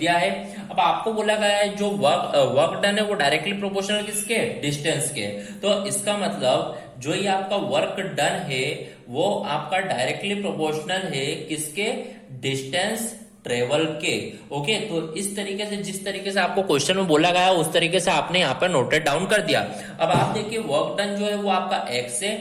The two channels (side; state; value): both; identical; correlation 1.00